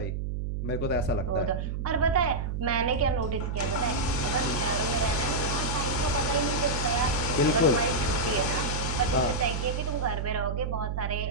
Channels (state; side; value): noise; right; hum, 2 dB below the sound